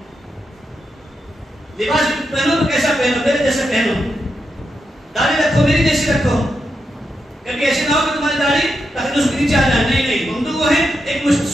لباس پہنو تو کیسا پہنو؟ میرے جیسا پہنو. داڑھی رکھو میری جیسی رکھو، کبھی ایسے نہ ہو کہ تمہاری داڑھی تاکہ اس کے نیچے آ جائے. نہیں، ممدوح وہ ہے ایک مشت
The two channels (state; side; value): normal; both; correlation 0.85